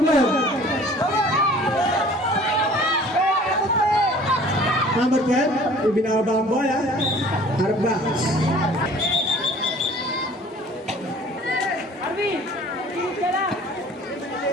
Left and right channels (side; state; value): both; normal; correlation 0.49